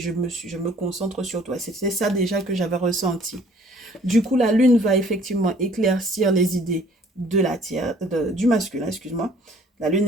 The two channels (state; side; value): normal; both; correlation 0.56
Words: me concentre sur toi. C'était ça déjà que j'avais ressenti. Du coup, la lune va effectivement éclaircir les idées de du masculin, excuse-moi. La lune